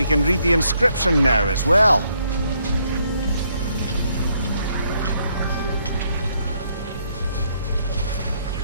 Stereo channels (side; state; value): both; inverted; correlation -0.72